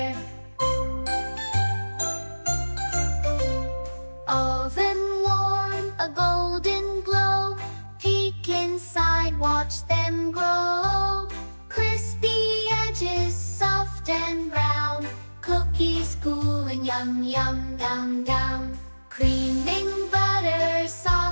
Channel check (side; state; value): both; inverted; correlation -1.00